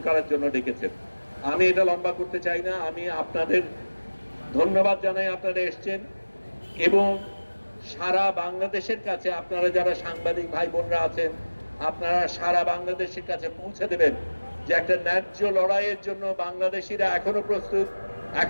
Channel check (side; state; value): both; inverted; correlation -1.00